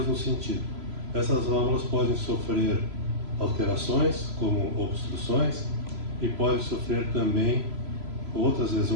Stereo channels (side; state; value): left; late; 3.0 ms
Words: no sentido. Essas válvulas podem sofrer alterações, como obstruções, e podem sofrer também outras